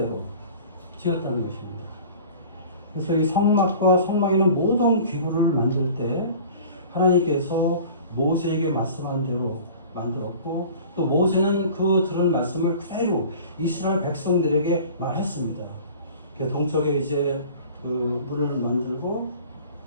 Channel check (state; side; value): inverted; both; correlation -0.43